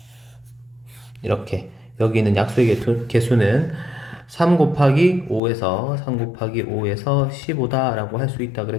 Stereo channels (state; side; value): drops out; right; at 5.4 s